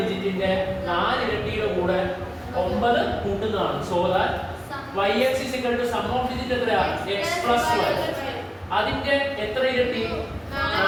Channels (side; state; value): both; identical; correlation 1.00